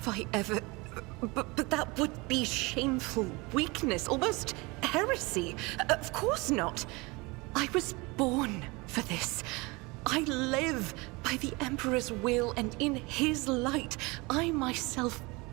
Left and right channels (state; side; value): quieter; left; 25.3 dB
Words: I ever... But that would be shameful weakness, almost heresy. Of course not. I was born for this. I live by the Emperor's will, and in his light, I myself